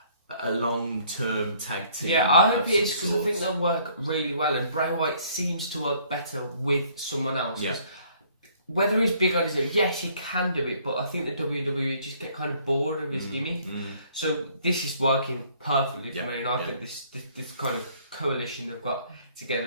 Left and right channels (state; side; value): inverted; both; correlation -0.61